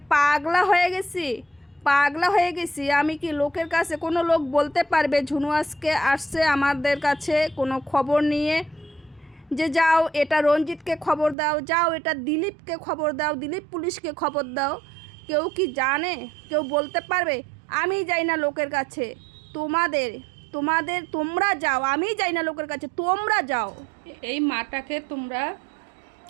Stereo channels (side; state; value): left; drops out; at 11.4 s